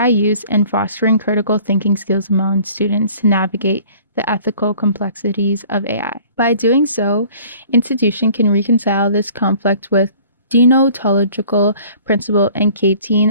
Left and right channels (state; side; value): inverted; both; correlation -0.51